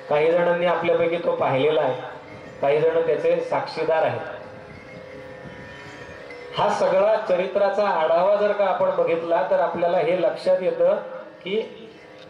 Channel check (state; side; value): identical; both; correlation 1.00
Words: काही जणांनी आपल्यापैकी तो पाहिलेला आहे, काही जण त्याचे साक्षीदार आहेत. हा सगळा चरित्राचा आढावा जर का आपण बघितला तर आपल्याला हे लक्षात येतं की